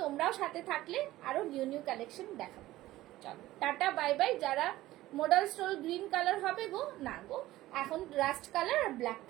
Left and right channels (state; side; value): quieter; left; 16.2 dB